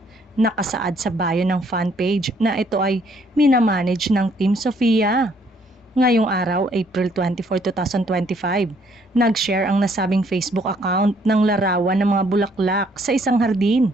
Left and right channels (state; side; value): normal; both; correlation 0.66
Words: Nakasaad sa bio ng fan page na ito ay minamanage ng Team Sofia. Ngayong araw, April 24, 2025, nag-share ang nasabing Facebook account ng larawan ng mga bulaklak sa isang hardin.